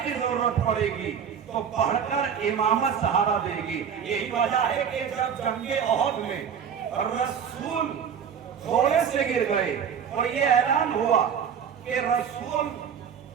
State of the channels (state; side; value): quieter; left; 7.7 dB